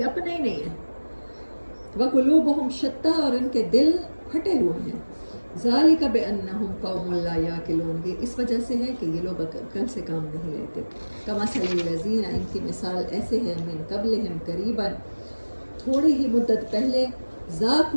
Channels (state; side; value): inverted; both; correlation -1.00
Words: اپنے ہی نہیں ہیں، وقلوبہم شتیٰ، اور ان کے دل پھٹے ہوئے ہیں، ذالک بأنہم قوم لا یعقلون، یہ اس وجہ سے ہے کہ یہ لوگ عقل سے کام نہیں لیتے، کمثل الذین، ان کی مثال ایسے ہیں، من قبلہم، قریباً، تھوڑی ہی مدت پہلے،